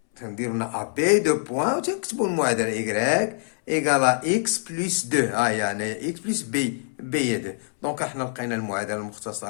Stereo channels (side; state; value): right; silent; 62 dB below the other